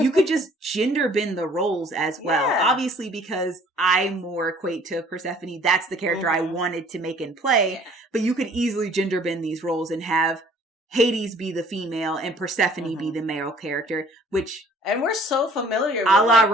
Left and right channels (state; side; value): normal; both; correlation 0.55